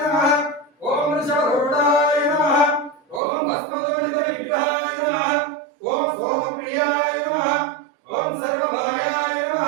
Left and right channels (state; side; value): drops out; left; at 3.2 s